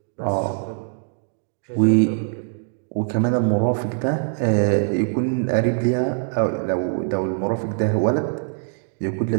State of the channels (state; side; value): silent; left; digital silence